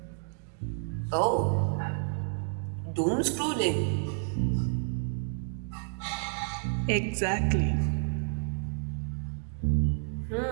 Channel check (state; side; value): silent; left; digital silence